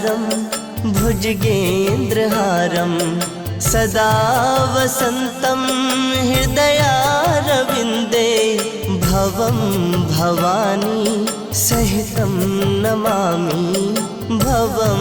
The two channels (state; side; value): identical; both; correlation 1.00